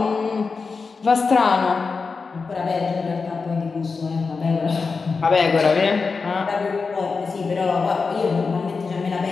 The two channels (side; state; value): right; quieter; 4.6 dB